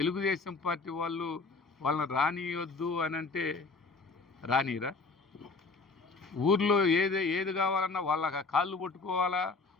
పార్టీ వాళ్ళని రానియొద్దు అని అంటే రానిరా? ఊర్లో ఏది కావాలన్నా వాళ్ళ కాళ్ళు పట్టుకోవాలా,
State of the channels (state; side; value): quieter; right; 4.0 dB